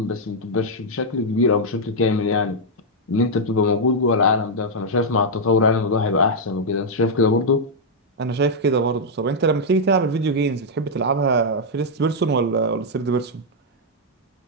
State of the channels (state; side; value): normal; both; correlation -0.03